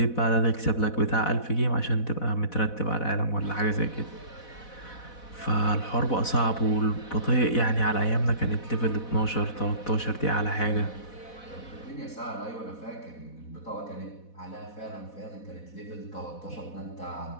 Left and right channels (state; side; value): late; right; 4.1 ms